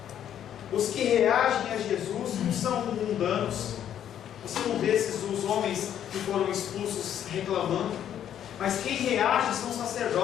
Os que reagem a Jesus não são mundanos. Você não vê os homens que foram expulsos reclamando, mas quem reage são os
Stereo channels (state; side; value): quieter; right; 10.1 dB